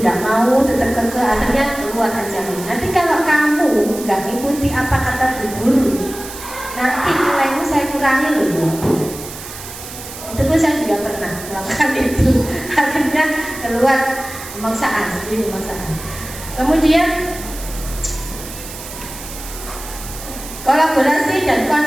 nggak mau, tetap keke, akhirnya keluar aja. Nanti kalau kamu nggak ngikuti apa kata bu guru, nanti nilaimu saya kurangi loh. Itu pun saya juga pernah melakukan itu. Akhirnya keluar pemaksaan, jadi pemaksaan. Kemudian kolaborasi dan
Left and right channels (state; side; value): noise; right; hiss, 12 dB below the sound